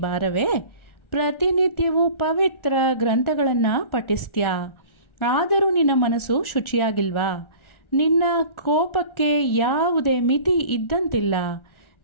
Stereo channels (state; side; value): late; right; 1.4 ms